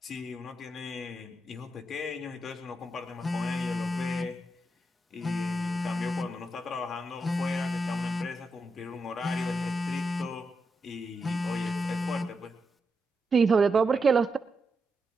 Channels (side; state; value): both; normal; correlation 0.86